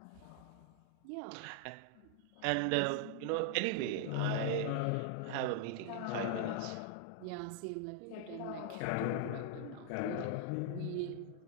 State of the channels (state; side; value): different; both; correlation 0.00